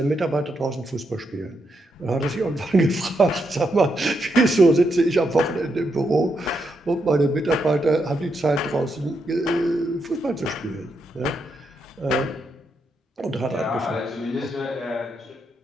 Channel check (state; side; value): normal; both; correlation 0.81